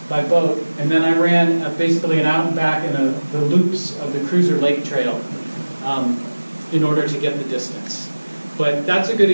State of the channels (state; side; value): inverted; both; correlation -1.00